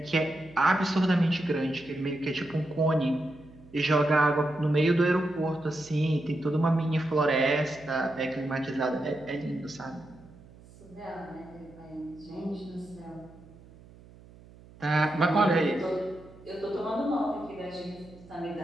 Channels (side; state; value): right; noise; hum, 22 dB below the sound